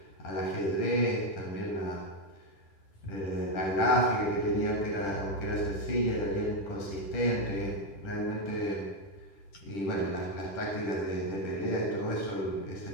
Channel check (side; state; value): right; late; 10 ms